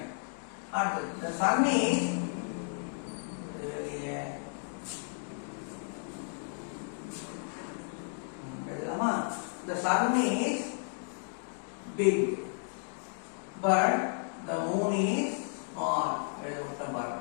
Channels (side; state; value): right; silent; 56 dB below the other